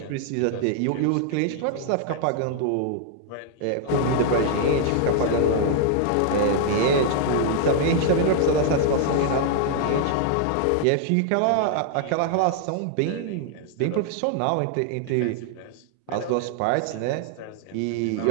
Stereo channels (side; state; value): both; different; correlation 0.00